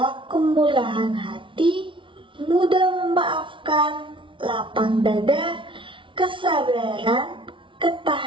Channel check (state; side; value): late; left; 0.25 ms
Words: kemurahan hati, mudah memaafkan, lapang dada, kesabaran,